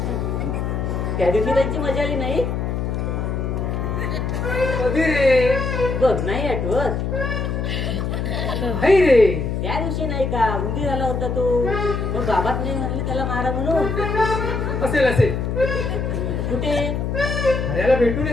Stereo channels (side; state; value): left; noise; hum, 1 dB below the sound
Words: त्या दिवशी त्यांची मजा आली नाही. कधी रे? बघ नाही आठवत. नाही रे. त्या दिवशी नाही का उंदी झाला होता तो, मग बाबात नाही म्हणले त्याला मारा म्हणून. असेल असेल. कुठे? हऱ्याला भेटून